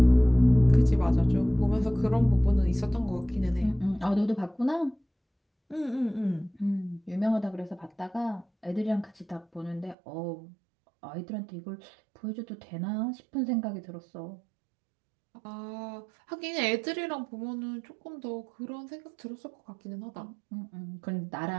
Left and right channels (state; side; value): drops out; left; at 10.0 s